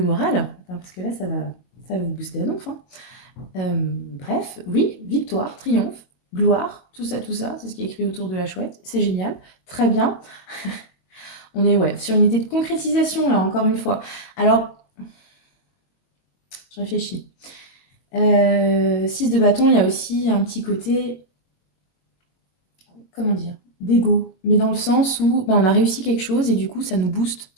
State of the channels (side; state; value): right; late; 22 ms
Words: moral, parce que là, ça va vous booster à donf, hein. Bref, oui, victoire, triomphe, gloire, tout ça, c'est ce qui est écrit autour de la chouette. C'est génial, très bien. On est sur une idée de concrétisation, là, encore une fois. Alors, je réfléchis. 6 de bâton, il y a aussi un petit côté, comment dire, d'ego, mais dans le sens où on a réussi quelque chose et du coup, ça booste